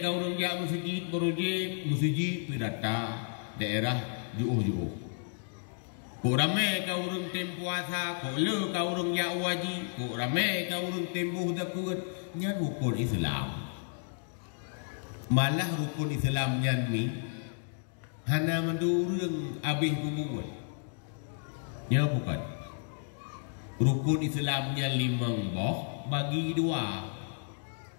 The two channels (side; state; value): right; silent; digital silence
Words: kau urang dia masjid pirata daerah jauh-jauh. Kurame kau urang tempuasa, kole kau urang dia wajib, kurame kau urang tempuh dakut nyan rukun Islam. Malah rukun Islam nyan ni hana mendurung abih bubuan. Ya bukan. Rukun Islamnya 5 boh bagi 2.